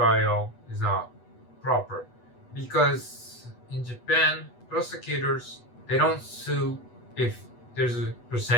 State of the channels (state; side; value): late; right; 8.2 ms